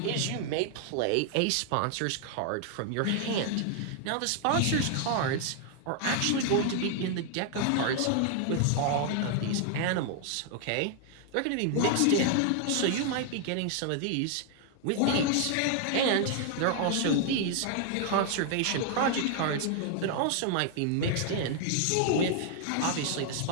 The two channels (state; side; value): different; both; correlation 0.00